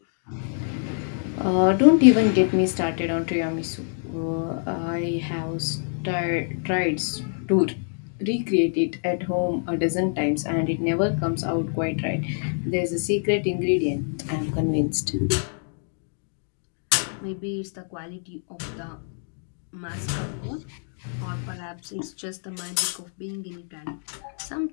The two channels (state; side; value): silent; right; digital silence